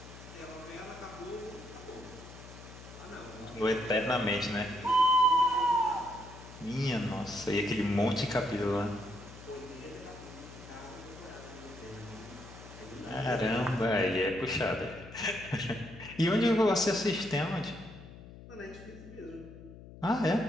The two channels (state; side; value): noise; left; hum, 16 dB below the sound